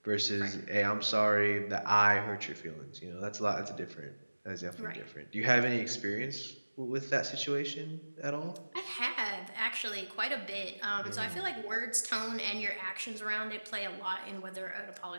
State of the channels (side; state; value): both; inverted; correlation -1.00